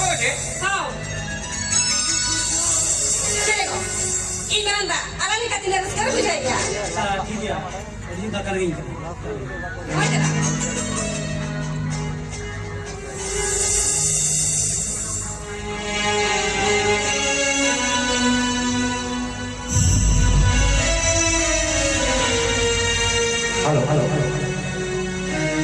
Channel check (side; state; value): both; identical; correlation 1.00